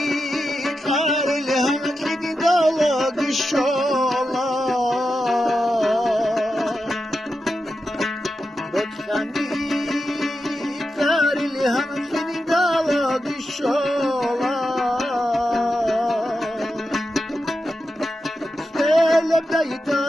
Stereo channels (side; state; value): both; normal; correlation 0.89